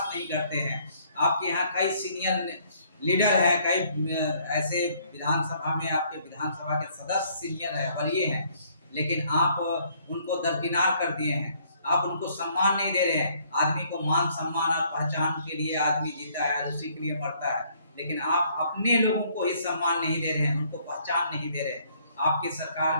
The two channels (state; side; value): inverted; both; correlation -0.64